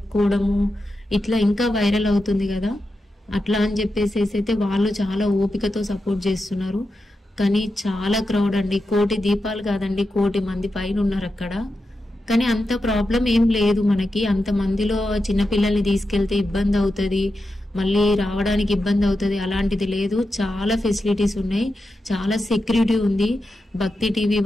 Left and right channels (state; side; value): normal; both; correlation 0.89